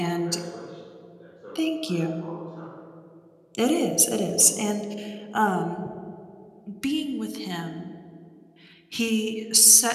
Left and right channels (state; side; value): identical; both; correlation 1.00